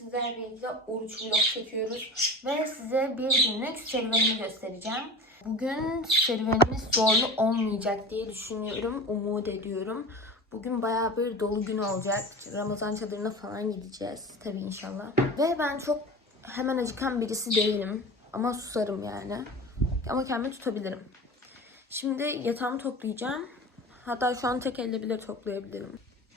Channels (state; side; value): normal; both; correlation 0.34